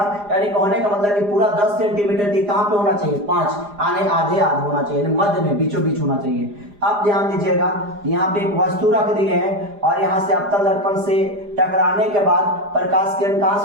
यानी कहने का मतलब कि पूरा 10 सेंटीमीटर की कहां पे होना चाहिए, 5 आने आधे होना चाहिए, मध्य में बीचों बीच होना चाहिए। अब ध्यान दीजिएगा, यहाँ पे एक वस्तु रख दी है और यहाँ से अवतल दर्पण से टकराने के बाद प्रकाश किरण कहां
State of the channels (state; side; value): late; left; 4.9 ms